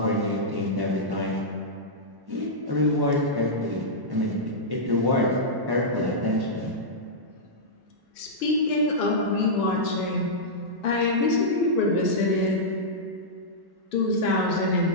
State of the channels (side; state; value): left; late; 1.1 ms